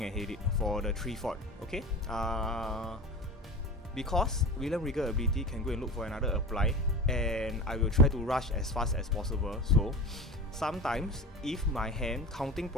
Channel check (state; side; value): normal; both; correlation 0.32